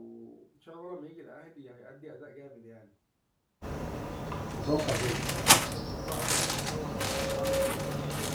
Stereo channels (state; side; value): identical; both; correlation 1.00